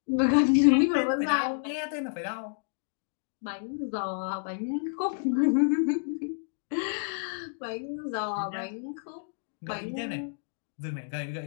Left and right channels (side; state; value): right; silent; digital silence